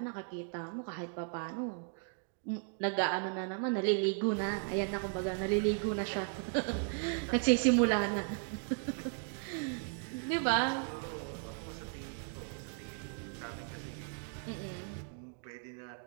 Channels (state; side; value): silent; left; 54 dB below the other